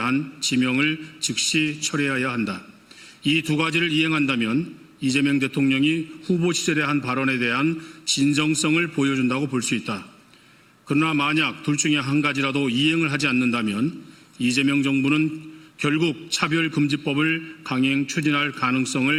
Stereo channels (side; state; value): both; identical; correlation 1.00